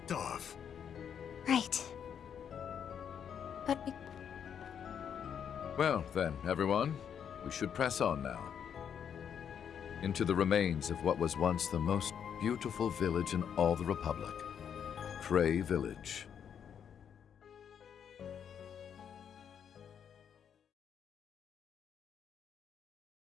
off. Right. But Well, then, everyone, we should press on now. Into the remains of what was once the most beautiful village in all the Republic. Cray Village.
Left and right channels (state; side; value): quieter; right; 8.2 dB